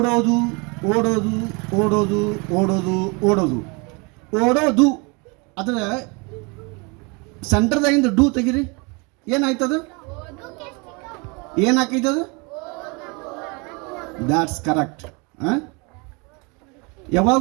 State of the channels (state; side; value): quieter; left; 30.1 dB